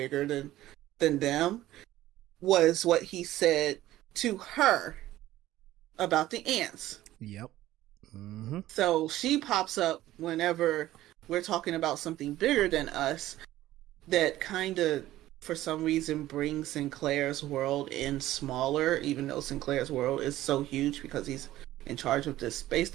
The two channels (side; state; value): left; quieter; 14.9 dB